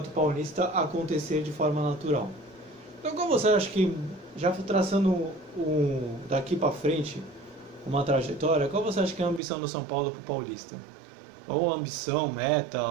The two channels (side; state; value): left; drops out; at 9.4 s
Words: Paulista acontecer de forma natural. Então, como você acha que, já traçando daqui para frente uma trajetória, qual você acha que é a ambição do São Paulo para o Paulista? Ou ambição, meta,